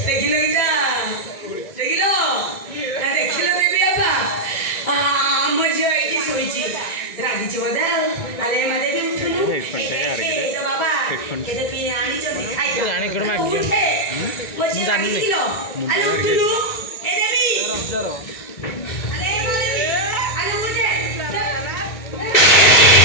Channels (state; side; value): late; right; 2.1 ms